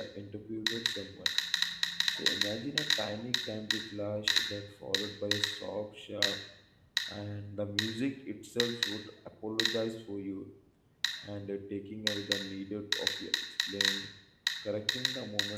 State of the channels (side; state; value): both; identical; correlation 1.00